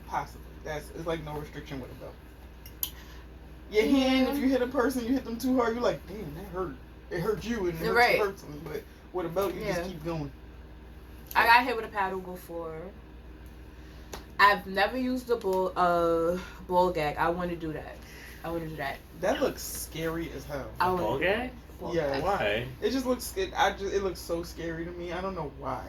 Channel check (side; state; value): both; identical; correlation 1.00